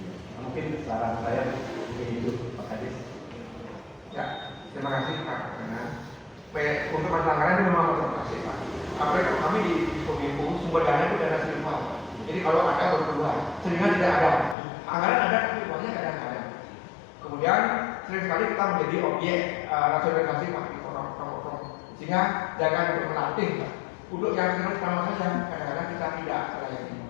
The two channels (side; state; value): right; drops out; at 14.6 s